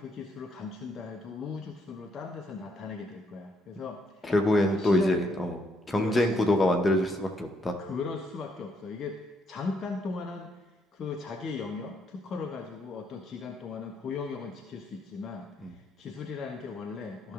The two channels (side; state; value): both; normal; correlation 0.72